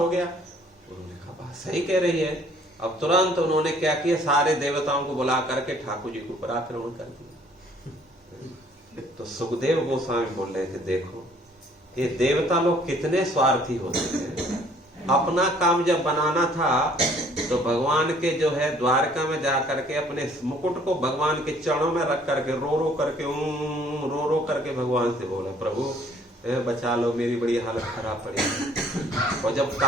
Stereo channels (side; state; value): both; normal; correlation 0.59